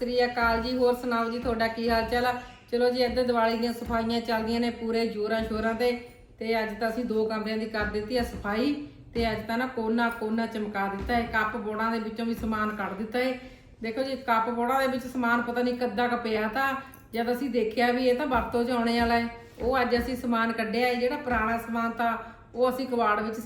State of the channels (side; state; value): both; identical; correlation 1.00